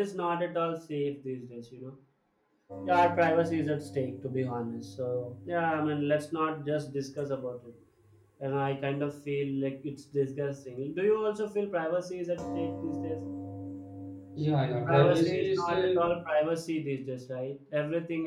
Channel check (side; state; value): both; identical; correlation 1.00